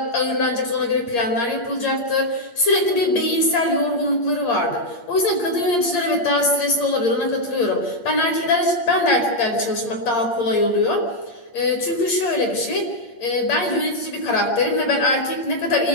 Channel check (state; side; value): late; right; 8.6 ms